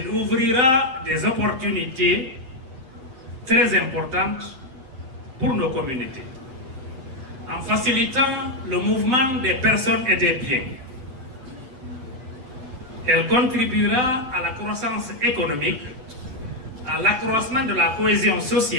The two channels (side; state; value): left; late; 7.9 ms